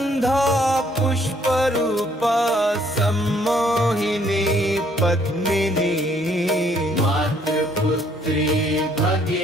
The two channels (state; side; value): normal; both; correlation 0.65